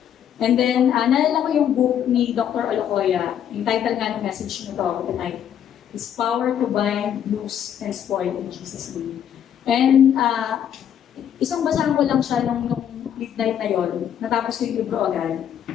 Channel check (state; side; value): quieter; right; 9.5 dB